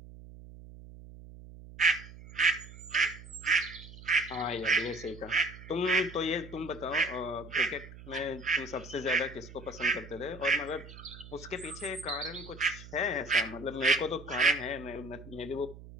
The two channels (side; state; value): right; noise; hum, 16 dB below the sound